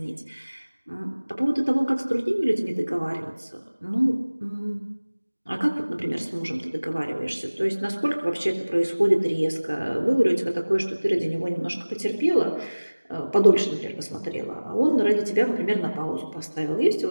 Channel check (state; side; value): inverted; both; correlation -1.00